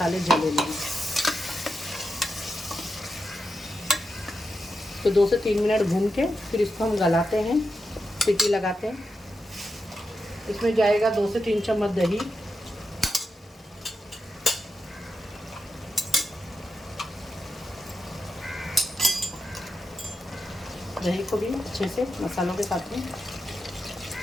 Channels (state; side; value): normal; both; correlation 0.87